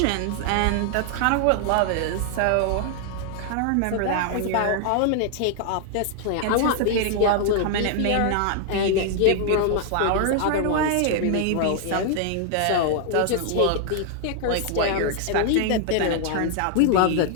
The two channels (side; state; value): both; different; correlation 0.00